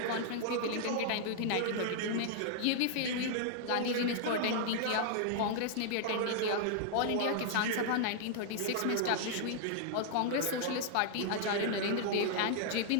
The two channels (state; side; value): different; both; correlation -0.01